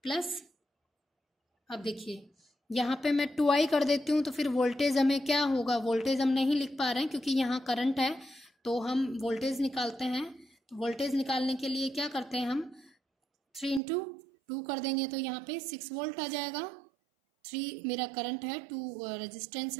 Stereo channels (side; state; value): left; drops out; at 13.8 s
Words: प्लस, अब देखिए यहाँ पे मैं 2I कर देती हूँ तो फिर वोल्टेज हमें क्या होगा, वोल्टेज हम नहीं लिख पा रहे हैं क्योंकि यहाँ करंट है। तो हम वोल्टेज निकालते हैं, तो वोल्टेज निकालने के लिए क्या करते हैं हम 3 × 2 कर देंगे तो यहाँ पे 6 वोल्ट आ जाएगा। 3 मेरा करंट है, 2 रेजिस्टेंस